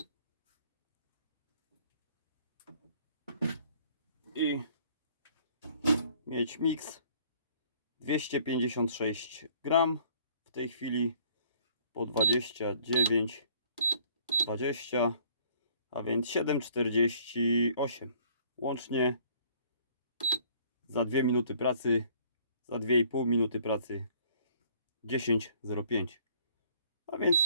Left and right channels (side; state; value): both; inverted; correlation -0.59